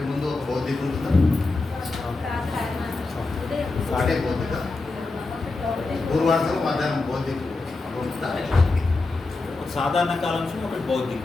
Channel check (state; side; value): quieter; right; 3.5 dB